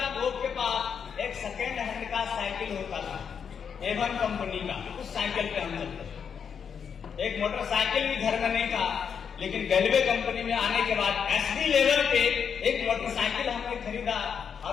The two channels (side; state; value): right; quieter; 7.1 dB